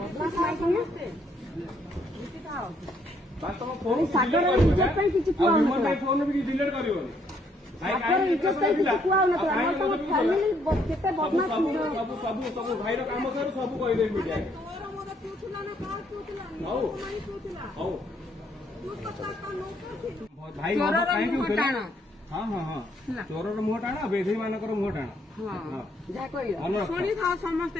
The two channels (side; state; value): both; normal; correlation 0.69